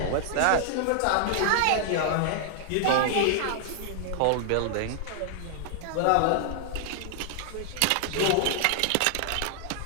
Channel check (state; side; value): different; both; correlation 0.00